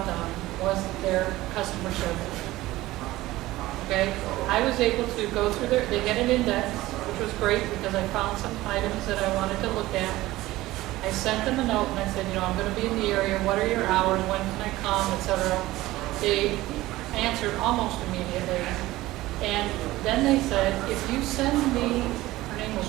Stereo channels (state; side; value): quieter; left; 17.5 dB